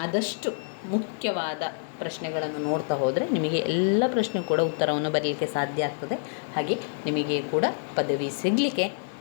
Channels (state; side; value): silent; right; 60 dB below the other